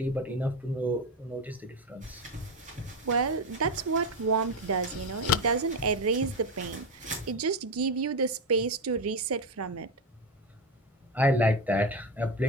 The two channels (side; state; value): both; normal; correlation 0.15